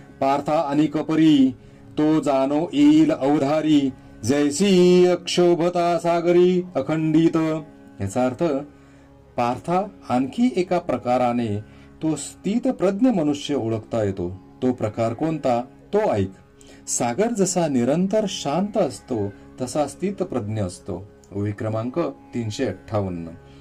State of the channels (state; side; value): identical; both; correlation 1.00